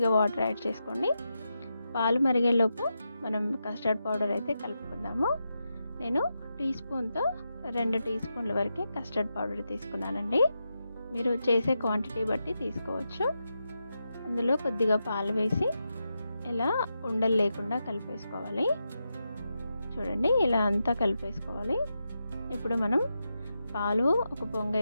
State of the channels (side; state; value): both; inverted; correlation -0.87